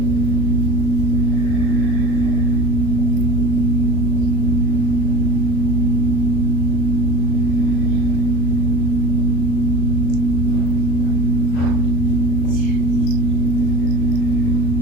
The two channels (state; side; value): late; right; 38 ms